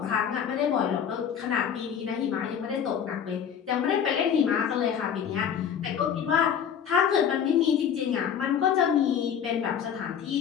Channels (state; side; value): quieter; right; 8.2 dB